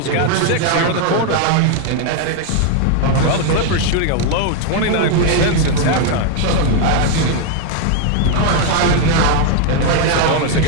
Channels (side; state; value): both; different; correlation 0.01